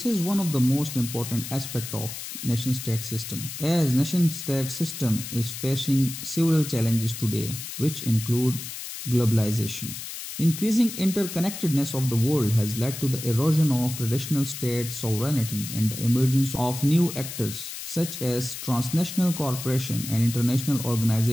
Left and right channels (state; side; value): noise; left; hiss, 9 dB below the sound